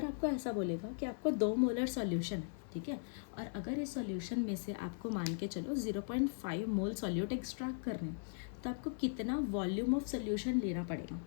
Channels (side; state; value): right; silent; 52 dB below the other